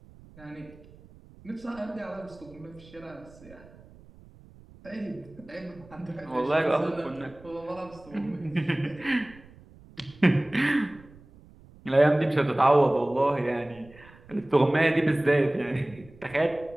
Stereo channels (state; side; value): noise; right; rumble, 23 dB below the sound